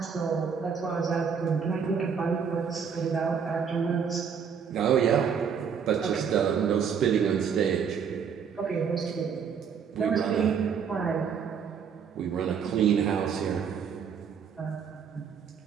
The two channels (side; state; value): left; quieter; 6.9 dB